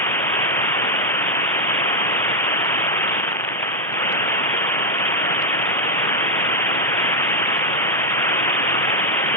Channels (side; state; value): both; normal; correlation 0.00